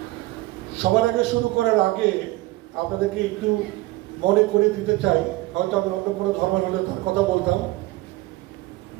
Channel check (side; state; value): left; quieter; 19.5 dB